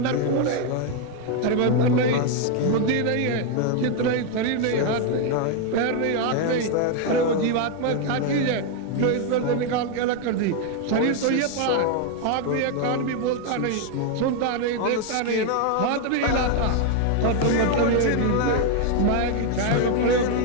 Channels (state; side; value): different; both; correlation 0.01